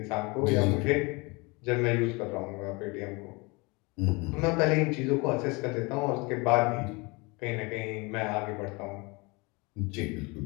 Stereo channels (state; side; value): quieter; right; 27.2 dB